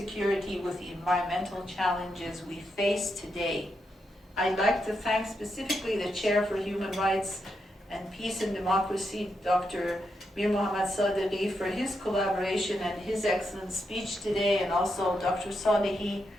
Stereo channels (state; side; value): normal; both; correlation 0.83